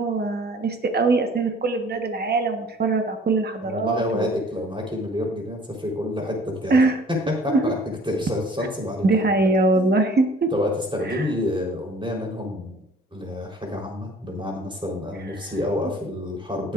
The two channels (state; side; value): normal; both; correlation 0.52